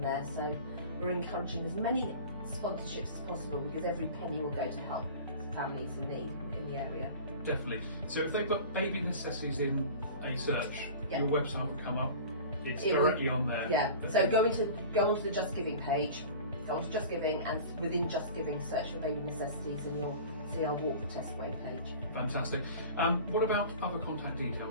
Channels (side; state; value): both; inverted; correlation -0.38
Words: So we're encouraging as many sponsorships as possible, because every penny will go to help families in need in the area. Definitely. So if they put Baby Necessities in a search, your website will come up. It's directly on there. Yeah. So go onto the Just Giving page. Go onto Just Giving, and within Just Giving, search for Baby Necessities, and you'll see our Walk the Test Way page. Fantastic. What about other contact